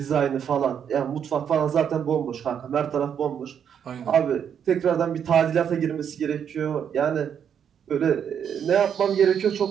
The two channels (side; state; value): left; quieter; 8.2 dB